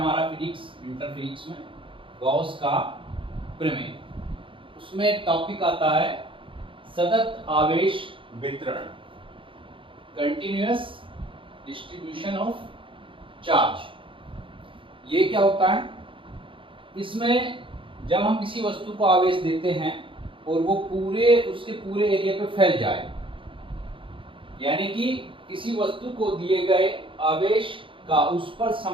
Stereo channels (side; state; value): left; late; 0.25 ms